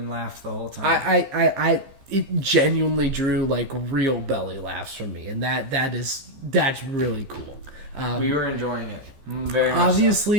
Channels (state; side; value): late; left; 14 ms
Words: laughed the whole time. It genuinely drew like real belly laughs from me, and that's really cool. We were enjoying it very much.